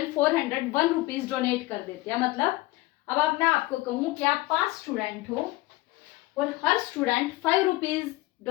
रुपीज डोनेट कर देते हैं. मतलब अब मैं आपको कहूँ कि आप 5 स्टूडेंट हो और हर स्टूडेंट 5 रुपीज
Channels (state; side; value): quieter; right; 19.6 dB